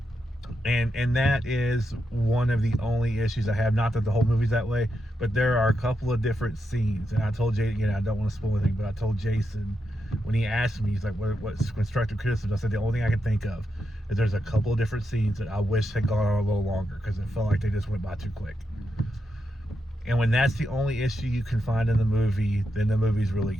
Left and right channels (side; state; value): both; normal; correlation 0.85